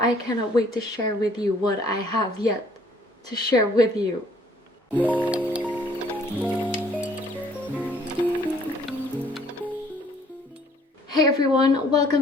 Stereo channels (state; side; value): normal; both; correlation 0.60